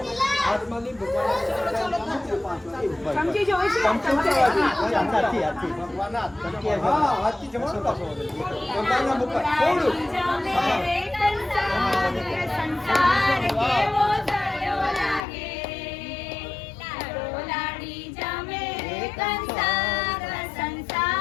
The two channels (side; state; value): right; drops out; at 15.2 s